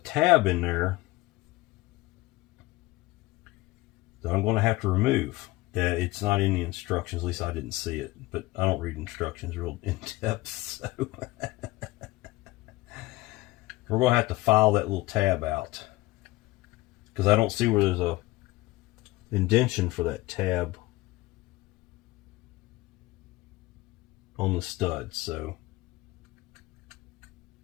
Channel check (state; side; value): quieter; right; 19.5 dB